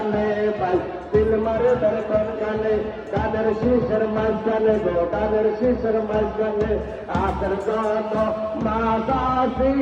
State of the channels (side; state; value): both; identical; correlation 1.00